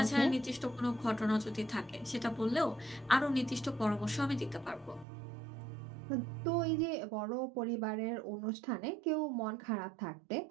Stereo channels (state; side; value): drops out; left; at 5.1 s